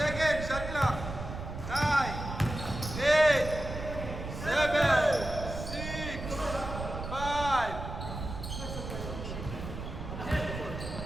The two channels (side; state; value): right; noise; rumble, 7 dB below the sound